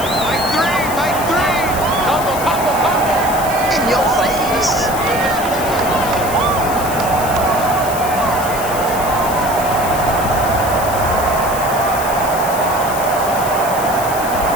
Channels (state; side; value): noise; left; hiss, 10 dB below the sound